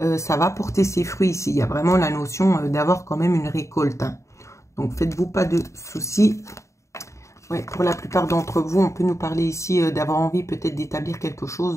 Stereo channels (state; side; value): late; right; 0.14 ms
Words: ça va porter ses fruits ici. Il y a vraiment la notion d'avoir quand même une récolte. Hein. Donc, faites-vous pas de soucis. Ouais, pour la plupart d'entre vous, on peut nous parler ici d'avoir envie peut-être d'établir quelque